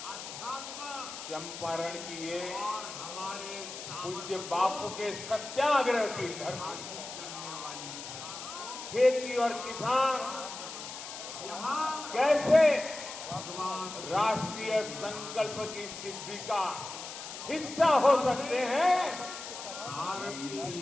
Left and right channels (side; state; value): left; noise; hiss, 10 dB below the sound